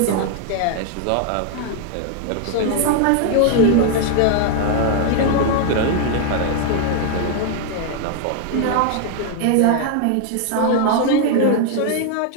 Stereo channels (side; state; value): both; different; correlation 0.00